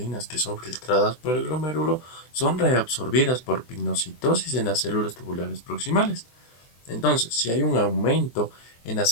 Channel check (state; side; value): late; right; 24 ms